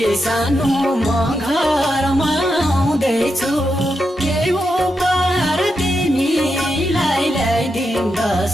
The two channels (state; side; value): normal; both; correlation 0.86